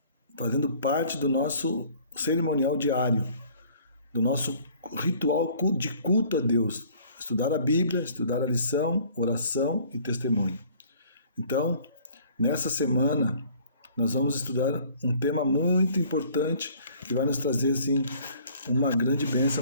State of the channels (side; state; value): both; inverted; correlation -0.54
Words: fazendo parte do nosso cerimonial diário, do nosso ritual de culto a Deus. Estudar a Bíblia, estudar a lição, oração e testemunho. Então, nessa semana, nós vamos estudar um tema muito importante que vai nos trazer, assim, uma grande bênção